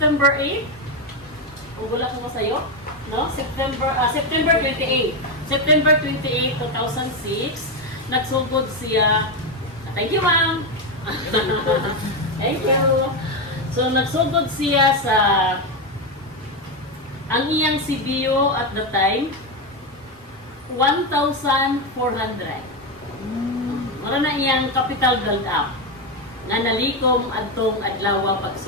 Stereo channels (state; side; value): normal; both; correlation 0.09